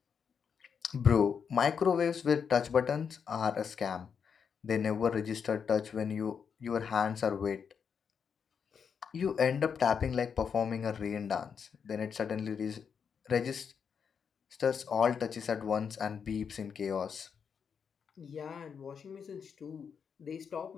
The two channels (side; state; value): right; quieter; 6.7 dB